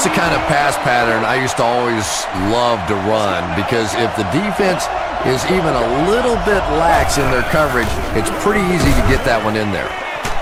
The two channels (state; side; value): identical; both; correlation 1.00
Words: the kind of pass pattern I used to always love to run, because if the defense is even a little bit lax in their coverage, it's pretty easy to get that one in there.